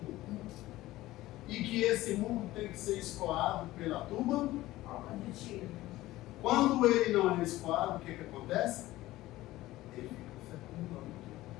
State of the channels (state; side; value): quieter; right; 16.9 dB